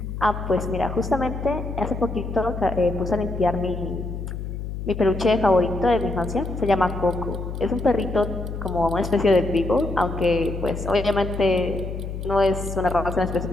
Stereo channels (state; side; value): noise; left; hum, 6 dB below the sound